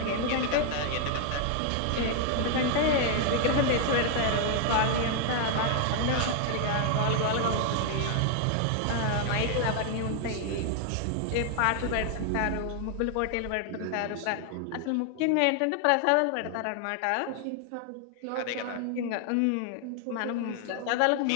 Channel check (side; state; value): both; different; correlation 0.00